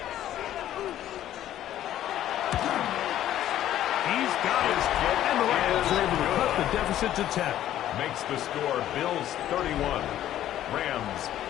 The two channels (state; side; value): quieter; right; 12.3 dB